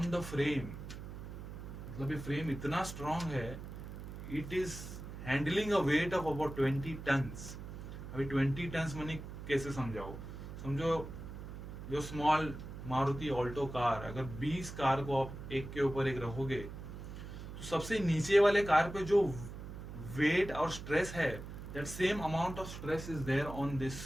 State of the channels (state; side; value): noise; right; hum, 10 dB below the sound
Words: the frame. मतलब ये फ्रेम इतना स्ट्रांग है, it is handling a weight of about 20 tons. अभी 20 टन्स मैंने कैसे समझाओ, समझो जो स्मॉल मारुति ऑल्टो कार, अगर 20 कार को आप एक के ऊपर एक रखोगे, तो सबसे नीचे वाले कार पे जो वेट और स्ट्रेस है, that same amount of stress is there on this